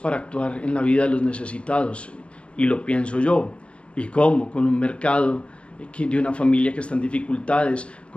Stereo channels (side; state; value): right; late; 0.060 ms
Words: actuar en la vida de los necesitados, y lo pienso yo. ¿Y cómo? Con un mercado de una familia que está en dificultades,